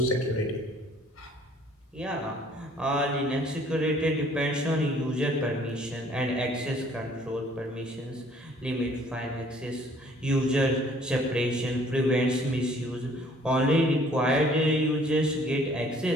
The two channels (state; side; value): normal; both; correlation 0.58